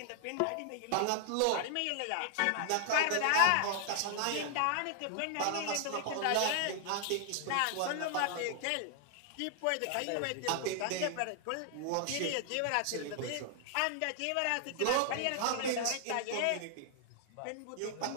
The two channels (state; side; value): different; both; correlation 0.00